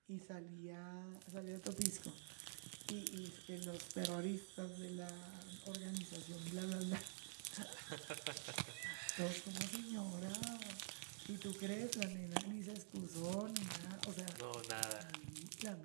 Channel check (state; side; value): silent; left; digital silence